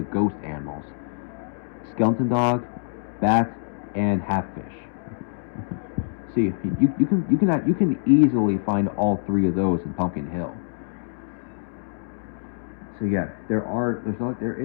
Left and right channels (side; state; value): right; silent; digital silence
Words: ghost animals: skeleton dog, bat, and half-fish. See, you can easily find all three of those in Pumpkin Hill. So yeah, there are